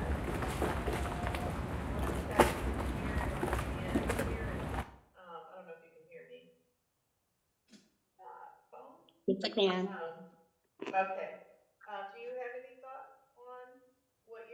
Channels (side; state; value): both; identical; correlation 1.00